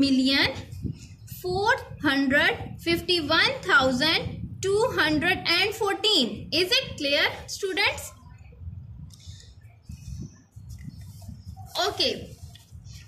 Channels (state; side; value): identical; both; correlation 1.00